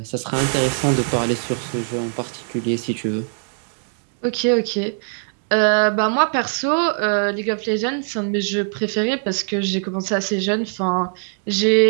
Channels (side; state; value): left; silent; digital silence